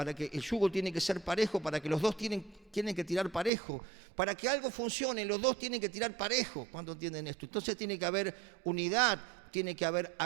que el yugo tiene que ser parejo, para que los dos tienen que tirar parejo. Para que algo funcione, los dos tienen que tirar parejo. ¿Cuántos entienden esto? Entonces tiene que haber unidad, tiene que haber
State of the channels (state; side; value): drops out; left; at 3.5 s